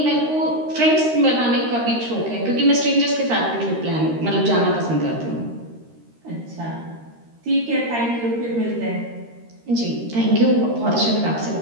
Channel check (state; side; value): late; left; 13 ms